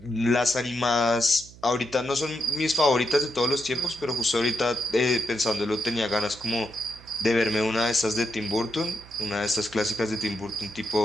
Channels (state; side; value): noise; right; hum, 21 dB below the sound